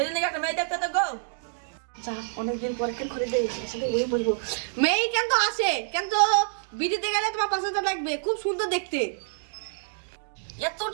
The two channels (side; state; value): left; silent; digital silence